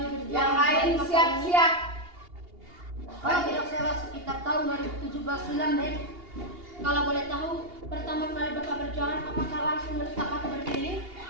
berjualan? Yang lain siap-siap. Kalau tidak salah sekitar tahun 2017 silam Dek. Kalau boleh tahu, pertama kali Bapak berjualan apakah langsung menetap atau berkeliling?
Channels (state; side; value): late; left; 2.8 ms